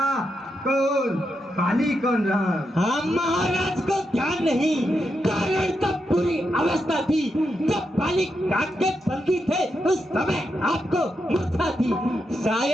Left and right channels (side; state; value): both; normal; correlation 0.84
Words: कौन पाली कौन राम। हाँ महाराज को ध्यान नहीं, कारण तब पूरी अवस्था थी जब पाली काट के बंदी थे, उस समय आपको मूर्छा थी।